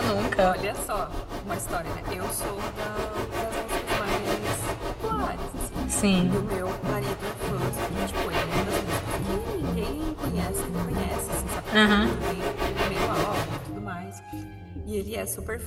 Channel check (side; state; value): both; identical; correlation 1.00